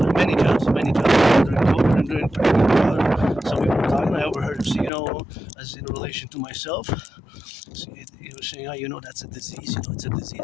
many jobs during COVID and during pandemic. Some people were talking. I overheard him say, as in relation to myself, he was saying, that's a disease. It's a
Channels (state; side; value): drops out; right; at 4.9 s